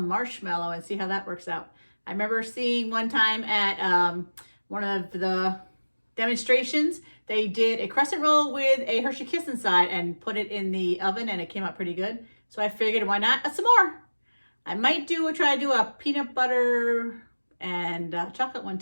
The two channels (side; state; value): both; inverted; correlation -1.00